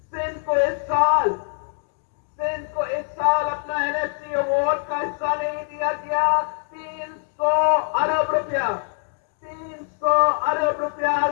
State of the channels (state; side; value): silent; right; 61 dB below the other